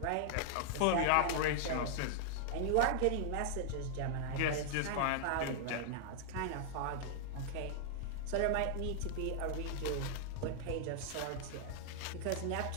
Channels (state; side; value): different; both; correlation -0.01